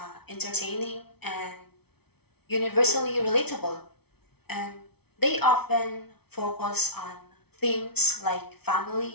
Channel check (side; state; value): right; late; 0.97 ms